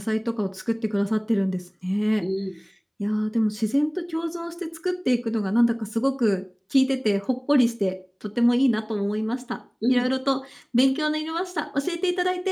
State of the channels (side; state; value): both; identical; correlation 1.00